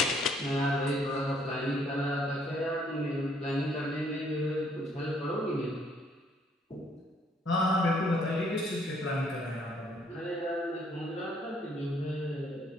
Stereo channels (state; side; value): normal; both; correlation 0.66